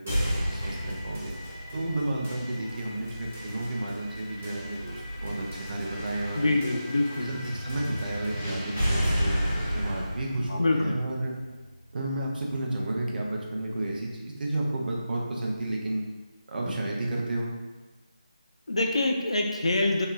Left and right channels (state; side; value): inverted; both; correlation -0.89